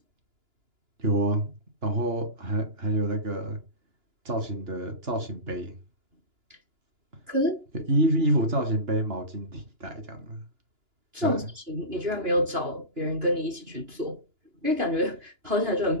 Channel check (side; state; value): left; late; 2.9 ms